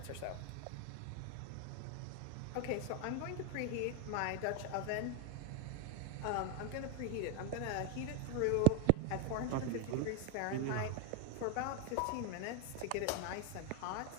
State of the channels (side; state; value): both; different; correlation 0.01